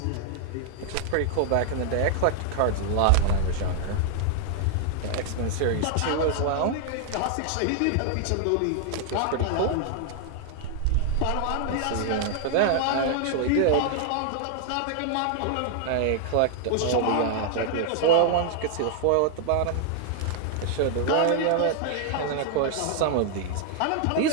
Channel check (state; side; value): different; both; correlation 0.00